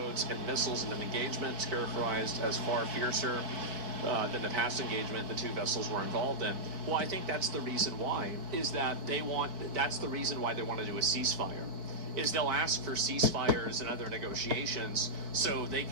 and missiles in an engagement characterized as far fiercer than the past engagement the two vessels were involved in. Well, I think that's the reason why, is that that's the reason why they want to do a ceasefire. Is they'll ask for ceasefires and other negotiations so they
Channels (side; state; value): left; late; 4.6 ms